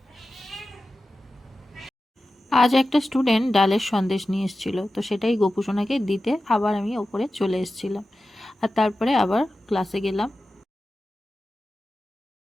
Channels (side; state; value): both; normal; correlation 0.94